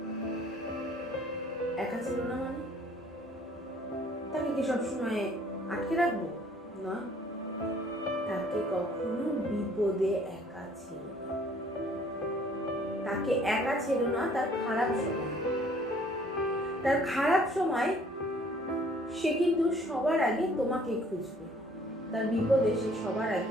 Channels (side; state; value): both; normal; correlation 0.58